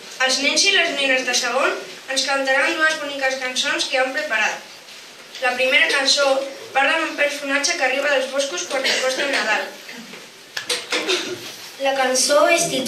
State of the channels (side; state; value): both; identical; correlation 1.00